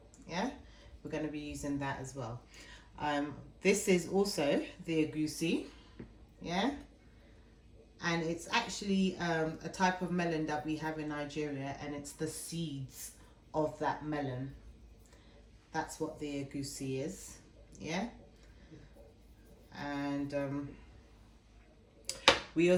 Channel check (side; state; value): both; identical; correlation 1.00